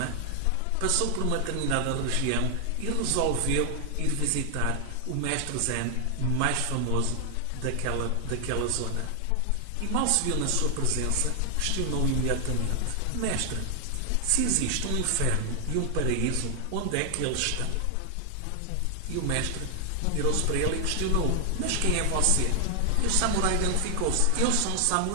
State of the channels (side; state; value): both; different; correlation 0.00